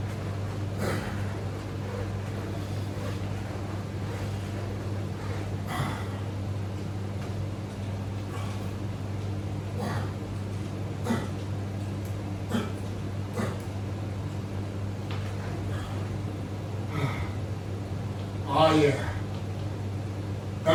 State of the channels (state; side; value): identical; both; correlation 1.00